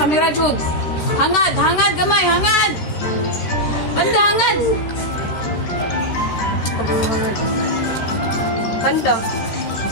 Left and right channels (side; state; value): right; late; 13 ms